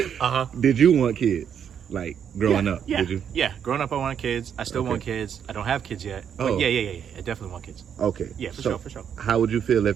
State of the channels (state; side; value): quieter; left; 8.3 dB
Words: Did you want kids? Like growing up? Yeah. Did you? Yeah. Growing up, I wanted kids. I still want kids. I don't have kids yet. But yeah. I definitely want kids. Okay. Yeah, for sure. How would you feel if